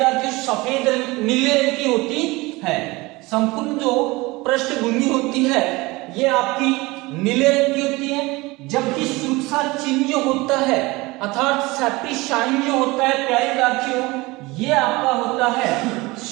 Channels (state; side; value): quieter; left; 22.5 dB